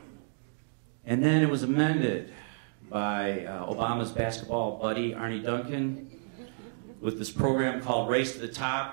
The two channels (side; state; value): left; silent; digital silence